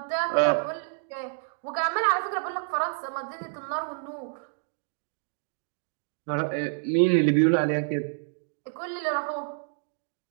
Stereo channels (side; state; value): left; silent; digital silence